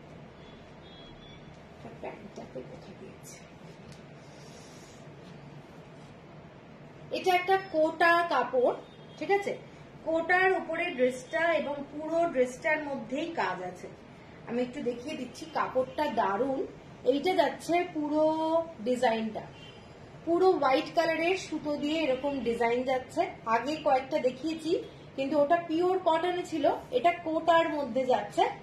প্যান্টটাতে কোথায় দিয়েছে, এটা একটা কোটা কাপড়, ঠিক আছে। কোটার উপরে ড্রেসটা, এবং পুরো ড্রেসটার মধ্যেই কাজ আছে। আমি একটু দেখিয়ে দিচ্ছি, কাপড়টা দারুণ। এইটা যাচ্ছে পুরো ডিজাইনটা, পুরো হোয়াইট কালারের সুতো দিয়ে এরকম ডিজাইন যাচ্ছে। আগে কয়েকটা দেখিয়েছি, কিন্তু ওটা পিওর কটনে ছিল, এটা কোটার মধ্যে যাচ্ছে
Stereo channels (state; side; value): identical; both; correlation 1.00